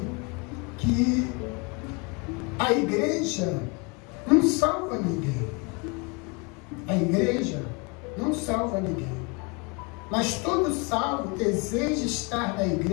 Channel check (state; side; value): quieter; right; 30.4 dB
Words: que a igreja não salva ninguém. A igreja não salva ninguém. Mas todo salvo deseja estar na